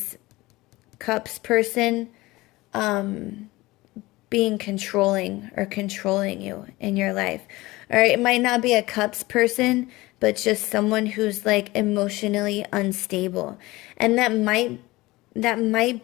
Cups person being controlling or controlling you in your life. Or it might not be a Cups person, but just someone who's like emotionally unstable. And that might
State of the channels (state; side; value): quieter; right; 20.1 dB